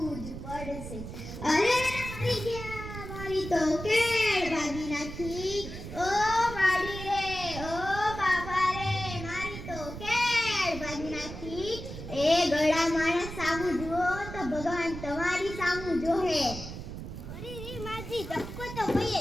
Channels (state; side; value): noise; right; rumble, 9 dB below the sound